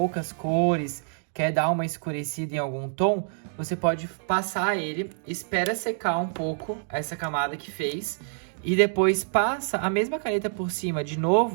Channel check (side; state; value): left; silent; digital silence